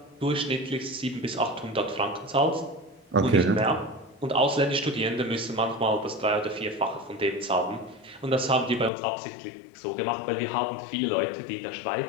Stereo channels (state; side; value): drops out; right; at 8.9 s